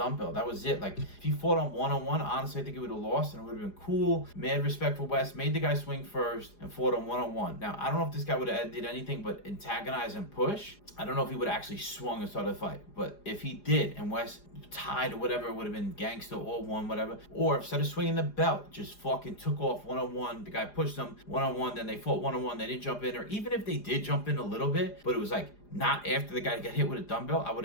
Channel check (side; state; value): right; late; 4.9 ms